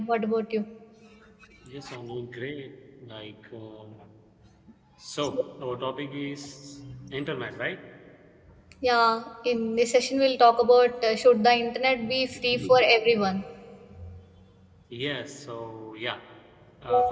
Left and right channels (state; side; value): identical; both; correlation 1.00